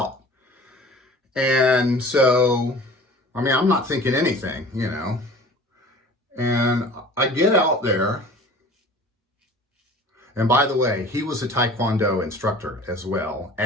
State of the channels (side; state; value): both; normal; correlation 0.44